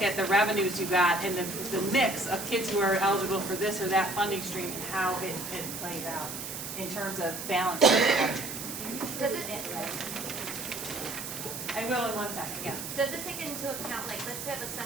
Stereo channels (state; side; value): noise; right; hiss, 7 dB below the sound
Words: at the revenues you got and the mix of kids who are eligible for this or that funding stream and how it plays out in terms of balancing the budget. Does it? I will in 1 second, yeah. Does it take into account, like, let's say if a